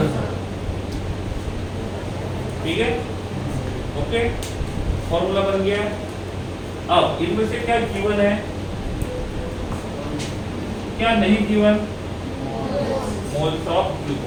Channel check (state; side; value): identical; both; correlation 1.00